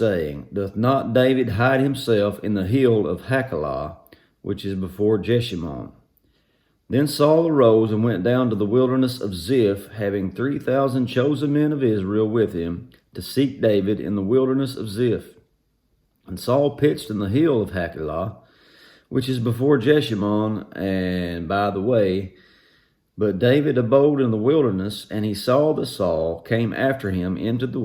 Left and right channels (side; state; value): both; identical; correlation 1.00